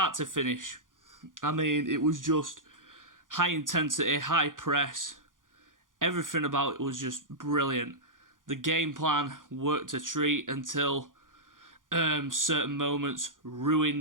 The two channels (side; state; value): left; late; 0.89 ms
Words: to finish, it was just high intensity, high press. Everything about it was just brilliant. The game plan worked a treat until certain moments